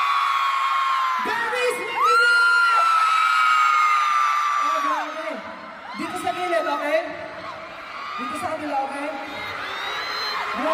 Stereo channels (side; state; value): both; identical; correlation 1.00